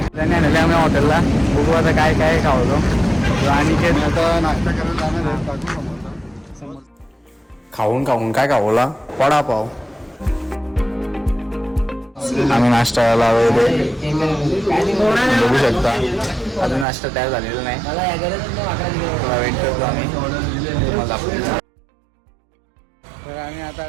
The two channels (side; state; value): left; drops out; at 16.9 s